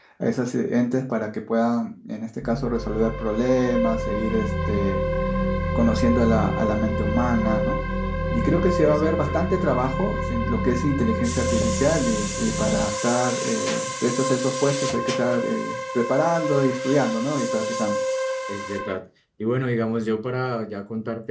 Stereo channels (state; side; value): identical; both; correlation 1.00